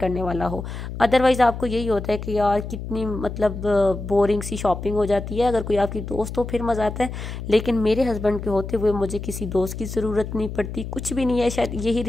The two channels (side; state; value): left; noise; hum, 8 dB below the sound